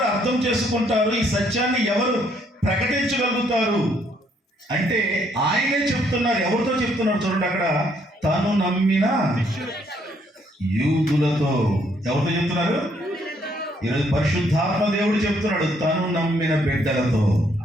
అర్థం చేసుకుంటారు, ఈ సత్యాన్ని ఎవరు ప్రకటించగలుగుతారు అంటే ఆయనే చెప్తున్నారు. ఎవరితో చెప్తున్నారు చూడండి అక్కడ, తను నమ్మిన యూదులతో. ఎవరితో చెప్తున్నారు? ఈరోజు పరిశుద్ధాత్మ దేవుడు చెప్తున్నాడు, తను నమ్మిన బిడ్డలతో.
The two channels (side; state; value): both; normal; correlation 0.69